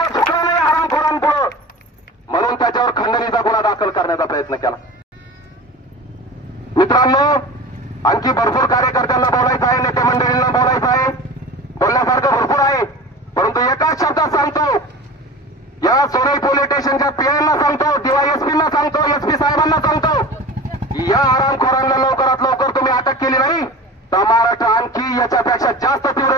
झुकला नाही हरामखोरांपुढं, म्हणून त्याच्यावर खंडणीचा गुन्हा दाखल करण्याचा प्रयत्न केला. मित्रांनो, आणखी भरपूर कार्यकर्त्यांना बोलायचं आहे, नेते मंडळींना बोलायचं आहे, बोलण्यासारखं भरपूर आहे. परंतु एकाच शब्दात सांगतो, या सोनई पोलीस स्टेशनच्या पीआयना सांगतो, डीवायएसपींना सांगतो, एसपी साहेबांना सांगतो, या हरामखोरांना लवकरात लवकर तुम्ही अटक केली नाही तर महाराष्ट्र आणखी याच्यापेक्षा जास्त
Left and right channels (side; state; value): both; normal; correlation 0.35